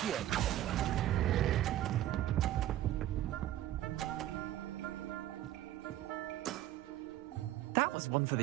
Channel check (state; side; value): quieter; left; 13.5 dB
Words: That was one for